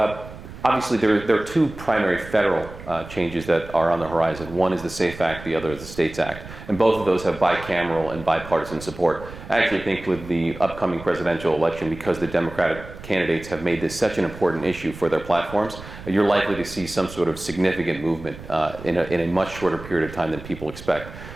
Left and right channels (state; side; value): noise; right; rumble, 14 dB below the sound